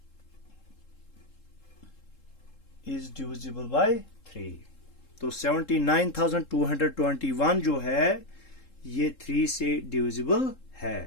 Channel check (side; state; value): right; late; 3.7 ms